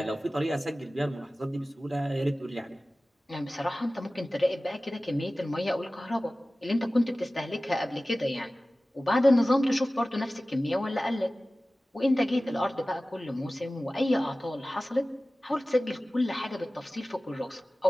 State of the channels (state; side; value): normal; both; correlation 0.97